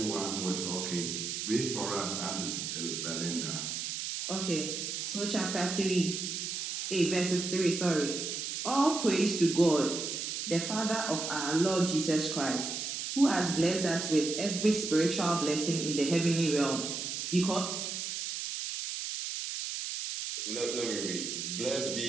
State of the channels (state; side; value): noise; right; hiss, 4 dB below the sound